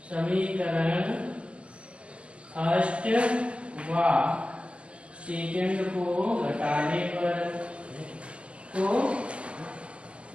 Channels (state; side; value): late; left; 0.055 ms